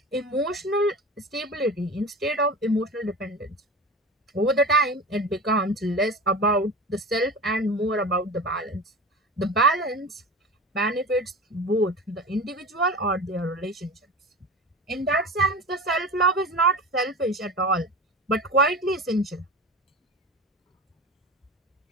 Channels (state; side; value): normal; both; correlation 0.31